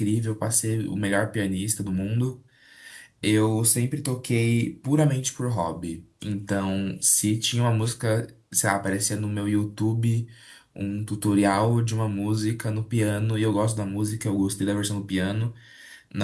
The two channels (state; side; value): identical; both; correlation 1.00